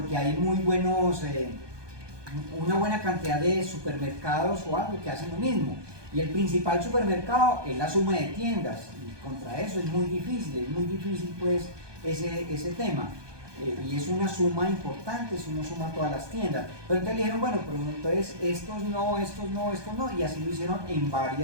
hay muy buenos, una buena cantidad de supermercados o algo que hacen lo mismo. Y el principal supermercado es la suma de tiendas, y contra eso es muy difícil pues ese tema. Y es una suma importante si uno suma todas las tiendas. Pero entonces le dijeron, bueno, pero entonces estos no, y así lo hicieron en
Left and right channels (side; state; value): left; late; 1.2 ms